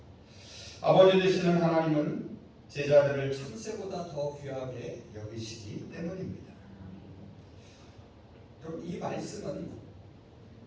아버지 되시는 하나님은 제자들을 참새보다 더 귀하게 여기시기 때문입니다. 여러분, 이 말씀은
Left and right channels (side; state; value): both; identical; correlation 1.00